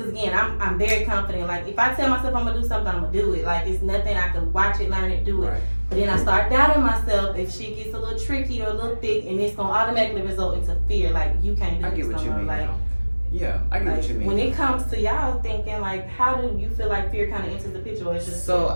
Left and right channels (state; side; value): inverted; both; correlation -1.00